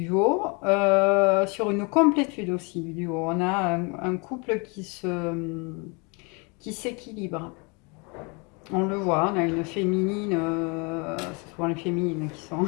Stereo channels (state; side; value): quieter; right; 31.3 dB